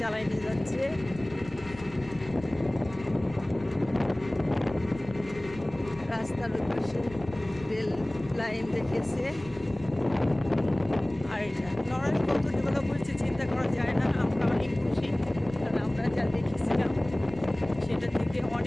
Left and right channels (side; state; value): left; noise; rumble, 17 dB below the sound